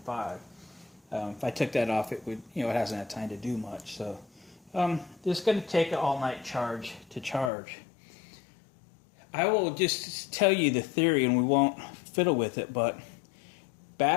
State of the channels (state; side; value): drops out; right; at 7.5 s